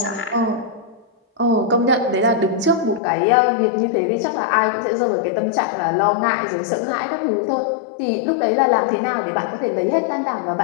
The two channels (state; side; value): drops out; right; at 3.0 s